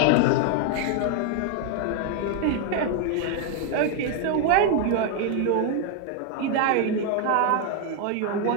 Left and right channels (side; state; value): both; different; correlation 0.00